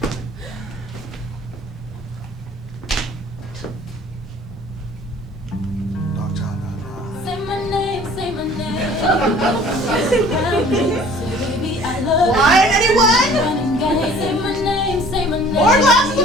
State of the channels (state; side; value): normal; both; correlation 0.51